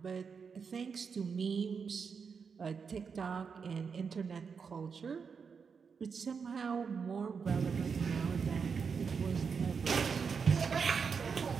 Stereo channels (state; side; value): quieter; left; 5.9 dB